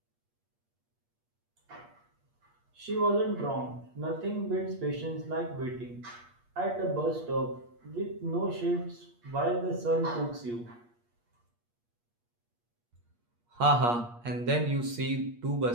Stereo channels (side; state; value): left; late; 8.5 ms